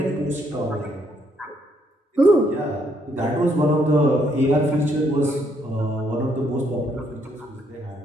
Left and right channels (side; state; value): both; normal; correlation 0.72